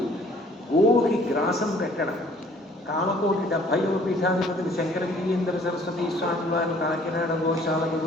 గోవుకి గ్రాసం పెట్టడం. కామకోటి 70వ పీఠాధిపతులు శంకరగిరీంద్ర సరస్వతి స్వామి వారిని కాకినాడ గోశాలకు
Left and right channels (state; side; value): normal; both; correlation 0.57